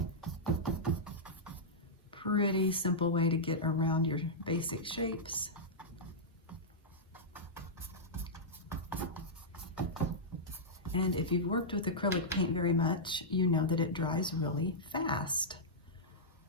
Pretty simple way to get around your basic shapes. And if you've worked with acrylic paint very much, you know that it dries really fast.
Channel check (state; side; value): normal; both; correlation -0.10